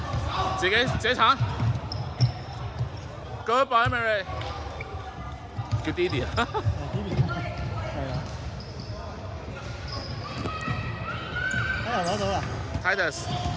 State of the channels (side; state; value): both; identical; correlation 1.00